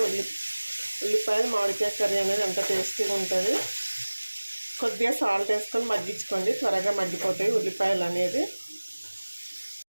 ఉల్లిపాయలు మామిడికాయ కర్రీ అనేది అంత టేస్టీగా ఉంటుంది. కొద్దిగా సాల్ట్ వేసుకొని మగ్గించుకోండి, త్వరగా మగ్గిపోతాయి ఉల్లిపాయలు అనేది.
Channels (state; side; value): inverted; both; correlation -1.00